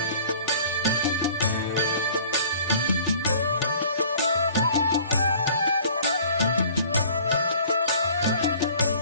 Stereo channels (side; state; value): both; inverted; correlation -0.50